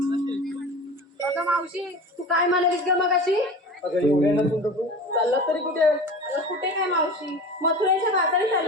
अगं मावशी तू काय म्हणालीस ग मगाशी? अगं एवढ्या चाललात तरी कुठे? अगं कुठे काय मावशी, मथुरेच्या बाजारी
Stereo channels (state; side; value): normal; both; correlation 0.35